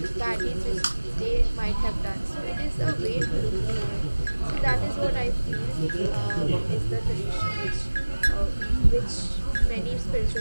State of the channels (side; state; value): both; inverted; correlation -1.00